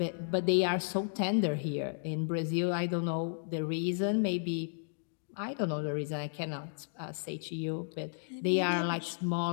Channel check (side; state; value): right; silent; digital silence